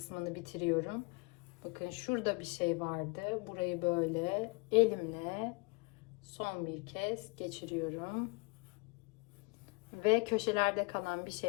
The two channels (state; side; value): quieter; right; 28.9 dB